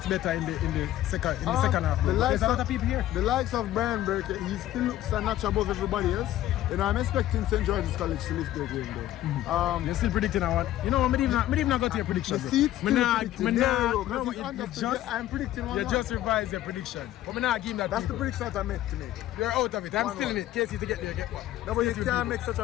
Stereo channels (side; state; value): right; quieter; 13.7 dB